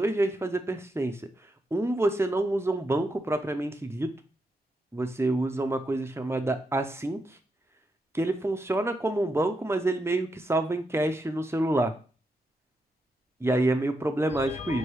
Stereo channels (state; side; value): normal; both; correlation 0.84